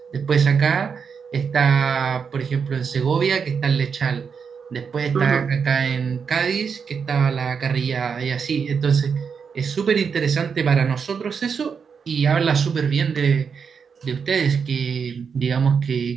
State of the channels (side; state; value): left; quieter; 6.2 dB